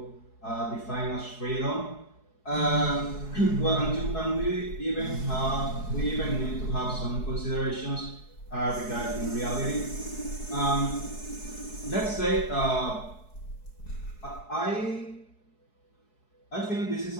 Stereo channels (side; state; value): right; late; 4.7 ms